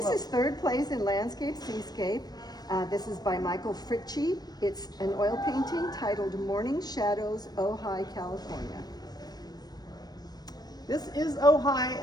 well, is third place in Landscape Seascape. This is by Michael Fritchie. It's an oil painting titled Morning Shadows, Ojai, California. This is Ojai,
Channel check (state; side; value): late; right; 0.19 ms